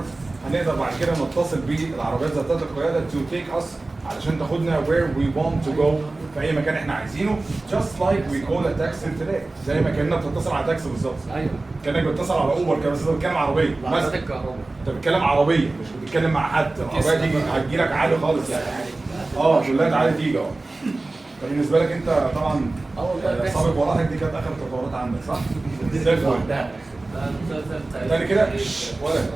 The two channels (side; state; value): left; quieter; 3.1 dB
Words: هنقدر بعد كده نتصل بالعربيات ذاتيه القياده to take us علشان تاخدنا where we want to go في اي مكان احنا عايزينه. just like we call a taxi today. زي ما كاننا بتتصل على تاكسي بالظبط. ايوه كانك بتتصل على اوبر كده، بس انت بتتكلم عربيه عربيات الكهرباء. انت بتتكلم عربيه مش بتتكلم مع حد. العربيه دي هتجيلك عادي خالص يعني. تقول لها تعالى تيجي اهو. فبالنسبه لك انت طبعا سابق وراحك دي كانت اخر التطورات عندك صح؟ زي الفل. تاني كده